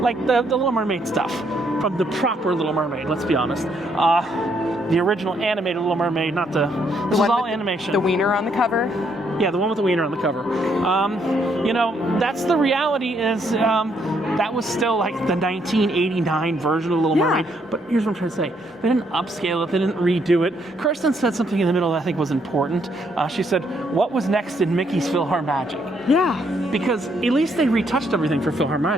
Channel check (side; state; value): both; normal; correlation 0.72